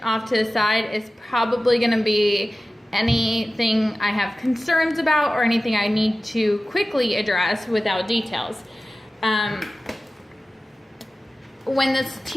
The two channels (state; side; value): normal; both; correlation 0.95